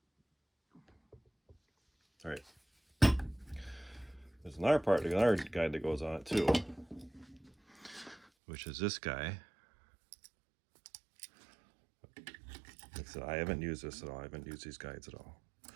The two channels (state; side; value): drops out; left; at 8.2 s